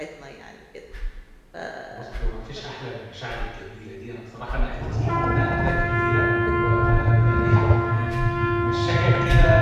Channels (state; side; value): identical; both; correlation 1.00